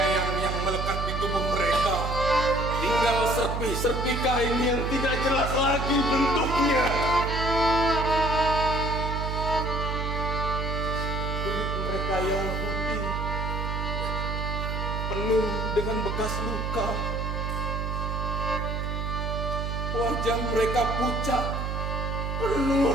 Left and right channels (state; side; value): noise; right; hum, 2 dB below the sound